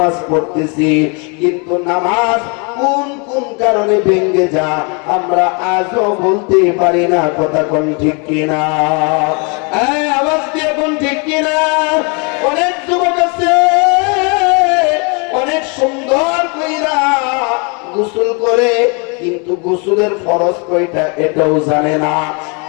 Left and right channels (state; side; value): quieter; right; 34.0 dB